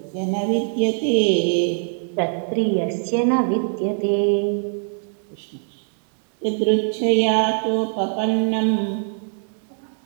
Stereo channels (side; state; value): left; silent; digital silence